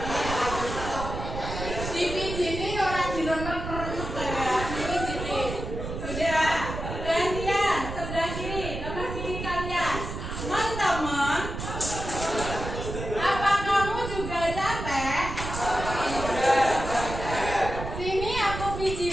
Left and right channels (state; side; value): noise; right; rumble, 6 dB below the sound